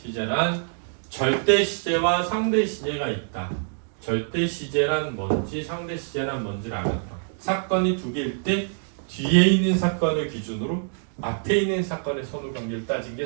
절대 시제와 상대 시제가 있다. 절대 시제란 뭔지 상대 시제란 뭔지를 알았다. 사건이 2개일 때 뒤에 있는 사건을 기준으로 앞에 있는 사건의 선후 관계를 따진 게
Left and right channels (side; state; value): left; silent; digital silence